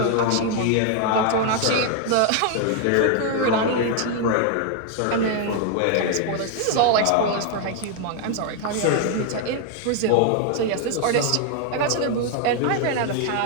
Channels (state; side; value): different; both; correlation 0.00